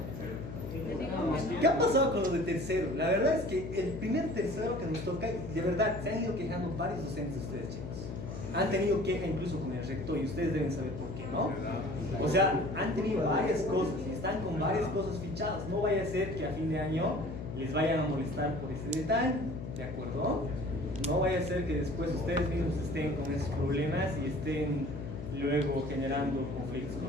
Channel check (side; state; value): left; noise; hum, 8 dB below the sound